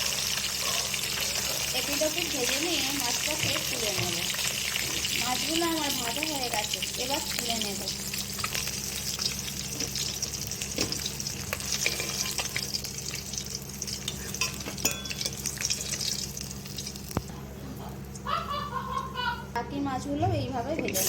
এপিটোপিট ভেজে নিয়ে মাছটাকে তুলে নেব। মাছগুলো আমার ভাজা হয়ে গেছে, এবার তুলে নেব। বাকি মাছগুলো এইভাবে ভেজে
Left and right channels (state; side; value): identical; both; correlation 1.00